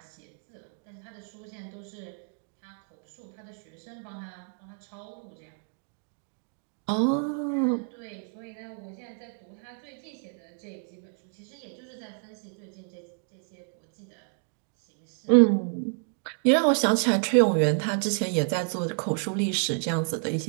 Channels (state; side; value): silent; left; 55 dB below the other